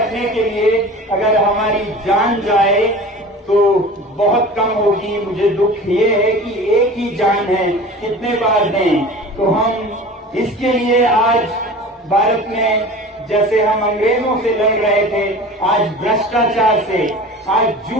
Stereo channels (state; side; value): normal; both; correlation 0.38